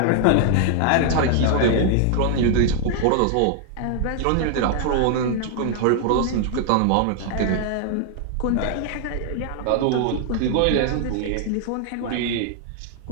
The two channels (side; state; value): both; different; correlation 0.00